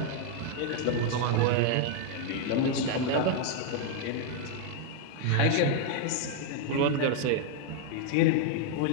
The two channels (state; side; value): different; both; correlation 0.00